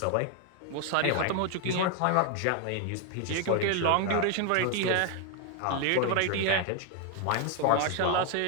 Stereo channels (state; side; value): different; both; correlation 0.01